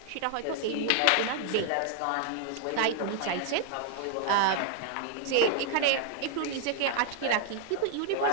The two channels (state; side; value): different; both; correlation 0.00